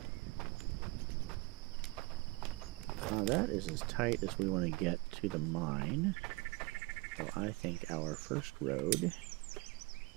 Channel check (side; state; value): left; quieter; 24.2 dB